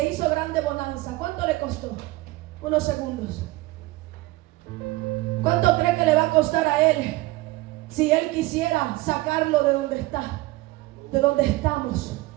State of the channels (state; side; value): quieter; left; 19.9 dB